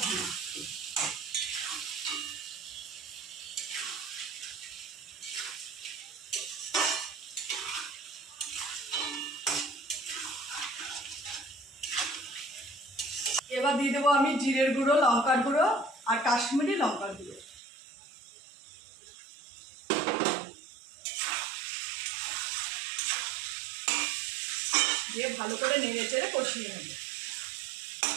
ঘি। এবার দিয়ে দেবো আমি জিরের গুঁড়ো, লঙ্কার গুঁড়ো আর কাশ্মীরি লঙ্কার গুঁড়ো। দিয়ে ভালো করে নেড়ে চেড়ে কষিয়ে নেব।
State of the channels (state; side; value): drops out; left; at 17.6 s